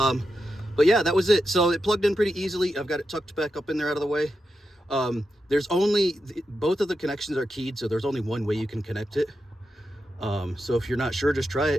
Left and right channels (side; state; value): both; normal; correlation 0.87